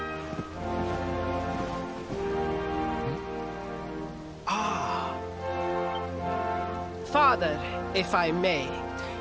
Father, if I may,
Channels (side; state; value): both; identical; correlation 1.00